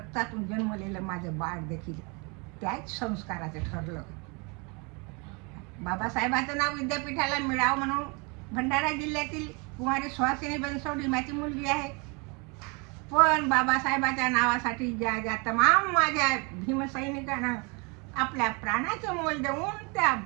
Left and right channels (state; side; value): quieter; left; 31.0 dB